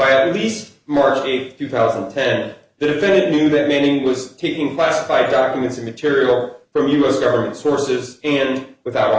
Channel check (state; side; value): identical; both; correlation 1.00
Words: at least March 8, 2010, the defendant knew that Manning was taking classified documents and material from U.S. government sources and, without